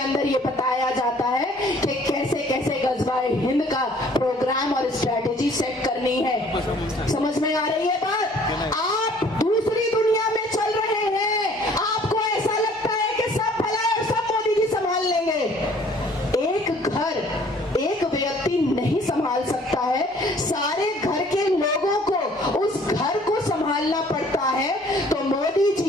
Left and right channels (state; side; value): normal; both; correlation 0.56